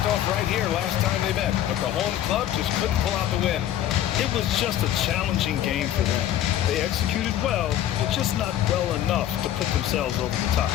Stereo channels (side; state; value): right; quieter; 11.8 dB